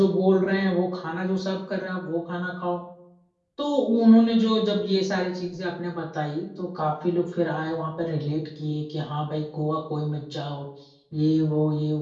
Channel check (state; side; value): identical; both; correlation 1.00